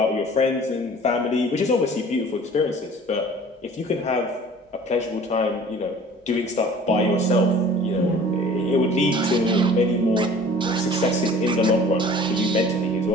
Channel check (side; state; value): both; normal; correlation 0.47